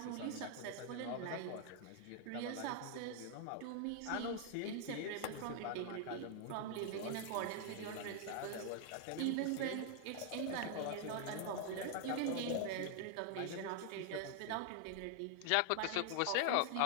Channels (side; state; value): both; different; correlation 0.00